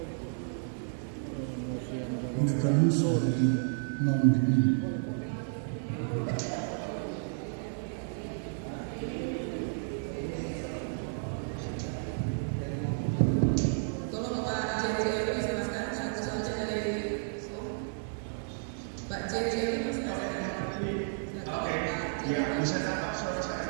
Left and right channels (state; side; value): silent; left; digital silence